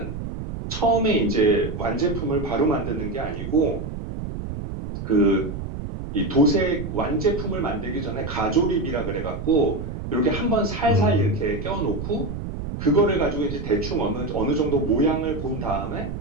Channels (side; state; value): right; noise; rumble, 7 dB below the sound